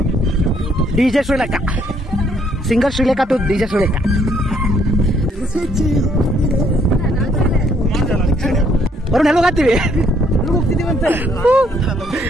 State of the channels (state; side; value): normal; both; correlation 0.67